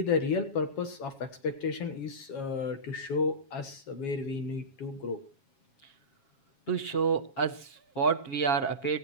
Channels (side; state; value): right; late; 7.3 ms